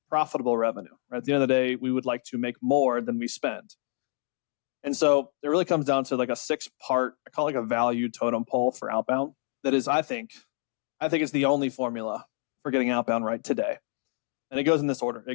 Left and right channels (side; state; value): right; silent; 60 dB below the other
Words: profitable revenue. Right? At the end of the day, we would like to make more than we spend. And so it really comes down to like a 6-part, I call it like a value totem pole for outbound. That is, I think it's the only formula for getting outbound right today. And it goes in this order.